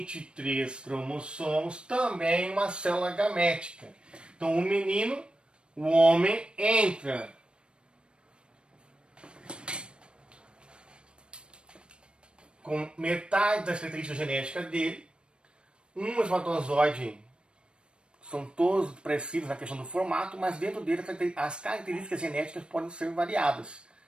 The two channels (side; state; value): left; late; 0.055 ms